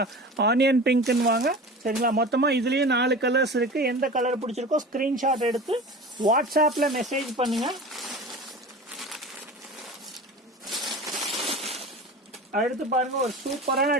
ஆனியன் பிங்க்னு வாங்க. சரிங்களா? மொத்தமாக இதுலேயும் 4 கலர்ஸ் இருக்கு. எந்த கலர் பிடிச்சிருக்கோ ஸ்க்ரீன்ஷாட் எடுத்து வாட்ஸ்அப்பில் மெசேஜ் பண்ணுங்க. அடுத்து பாருங்க ஒரு சூப்பரான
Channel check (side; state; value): both; normal; correlation 0.35